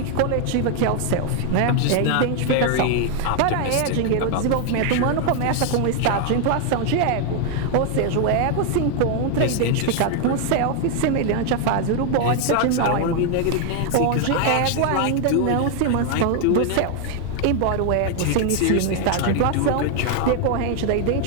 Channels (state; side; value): different; both; correlation 0.00